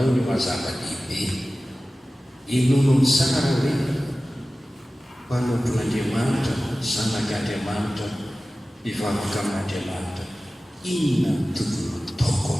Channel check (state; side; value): normal; both; correlation 0.96